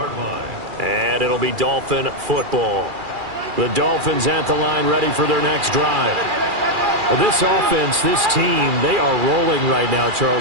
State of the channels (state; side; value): late; left; 2.4 ms